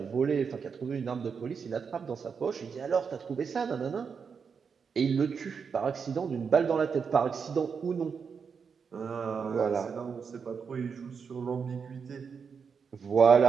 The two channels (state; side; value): quieter; left; 6.1 dB